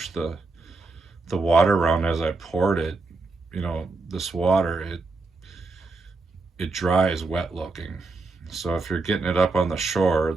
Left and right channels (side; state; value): left; quieter; 3.6 dB